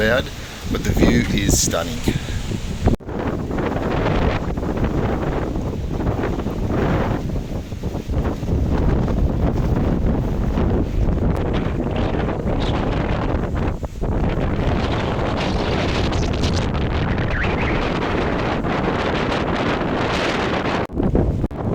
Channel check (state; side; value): identical; both; correlation 1.00